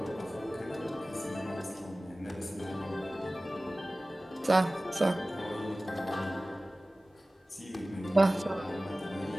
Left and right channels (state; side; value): normal; both; correlation 0.97